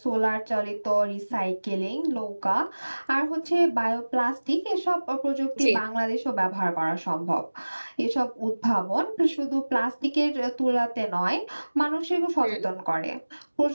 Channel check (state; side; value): inverted; both; correlation -1.00